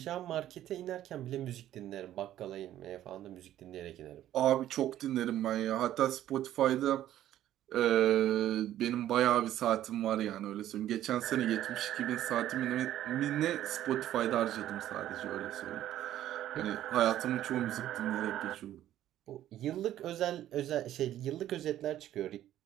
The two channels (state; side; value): quieter; left; 12.5 dB